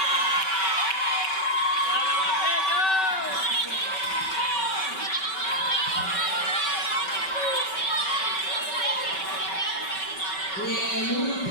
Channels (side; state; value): right; late; 5.3 ms